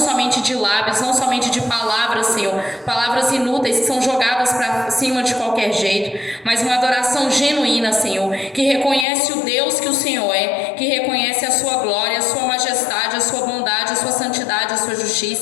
de lábios, não somente de palavras, Senhor, palavras inúteis que são jogadas para cima de qualquer jeito, mas uma adoração genuína, Senhor, que reconhece o Deus que o Senhor é, que reconhece a sua glória, a sua majestade, a sua bondade, a sua santidade, a sua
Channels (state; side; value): drops out; right; at 9.1 s